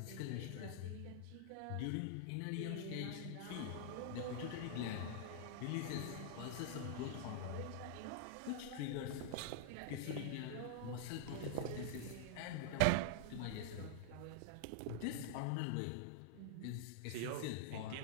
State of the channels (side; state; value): both; different; correlation -0.01